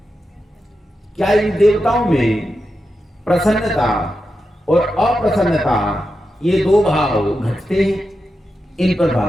क्या इन देवताओं में प्रसन्नता और अप्रसन्नता, ये 2 भाव घटते हैं? इन पर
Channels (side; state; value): both; normal; correlation 0.89